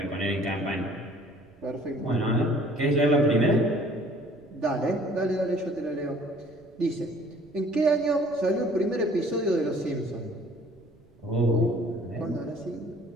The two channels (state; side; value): noise; right; rumble, 28 dB below the sound